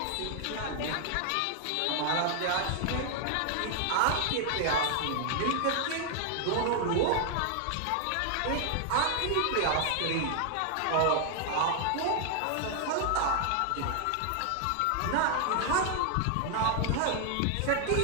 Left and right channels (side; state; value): both; different; correlation 0.00